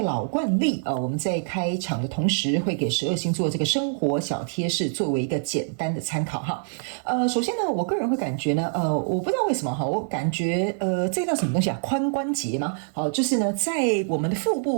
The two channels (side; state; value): left; silent; 62 dB below the other